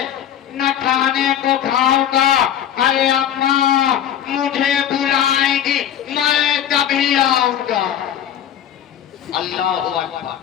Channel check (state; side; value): quieter; right; 10.0 dB